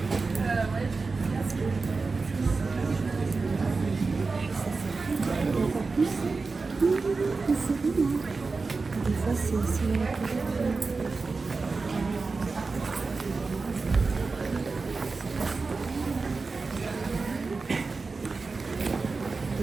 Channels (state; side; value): quieter; left; 4.1 dB